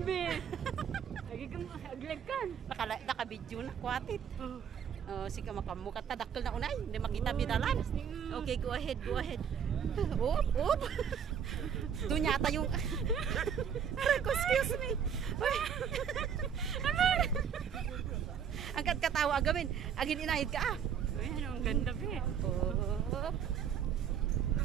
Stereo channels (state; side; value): quieter; left; 7.8 dB